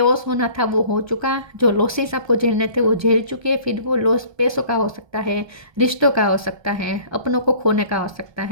होना था वो हो चुका। जो लॉसेस आपको झेलने थे वो झेल चुके। फिर वो लॉस पैसों का हो सकता है, रिश्तों का हो सकता है, अपनों को खोने का हो सकता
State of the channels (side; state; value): left; late; 1.3 ms